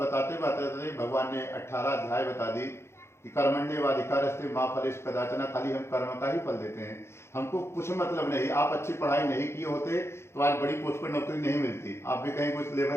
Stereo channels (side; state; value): right; late; 0.13 ms